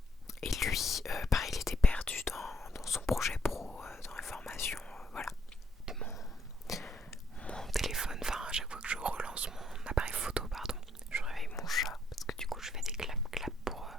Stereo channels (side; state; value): both; normal; correlation 0.71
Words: Et lui, pareil, il était perdu dans son projet pro, dans les formations, voilà. Mon téléphone, enfin à chaque fois que je relance mon appareil photo, pardon, je réveille mon chat parce que du coup je fais des clap